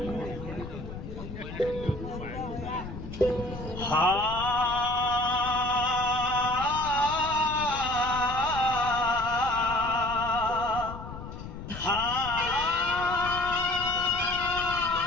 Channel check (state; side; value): noise; left; rumble, 10 dB below the sound